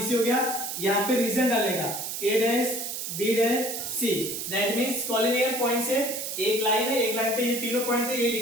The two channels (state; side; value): noise; right; hiss, 5 dB below the sound